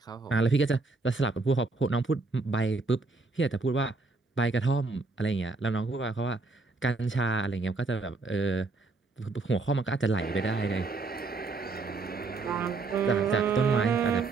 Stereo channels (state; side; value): quieter; left; 3.7 dB